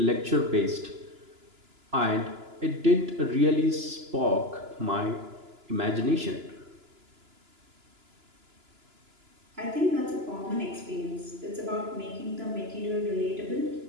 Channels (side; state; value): left; late; 2.9 ms